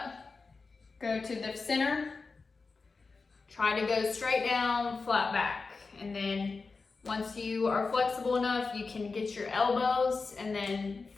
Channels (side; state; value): right; quieter; 4.3 dB